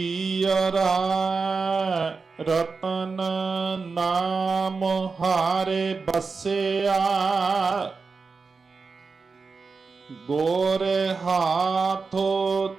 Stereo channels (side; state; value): left; quieter; 4.6 dB